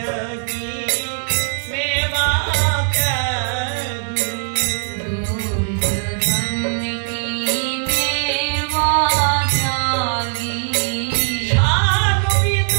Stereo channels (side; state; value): left; silent; 61 dB below the other